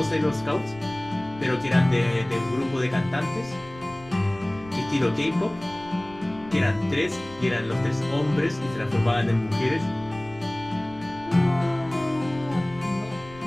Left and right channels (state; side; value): noise; left; rumble, 20 dB below the sound